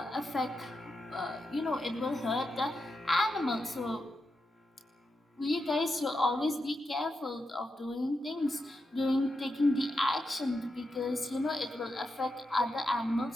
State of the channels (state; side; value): normal; both; correlation 0.87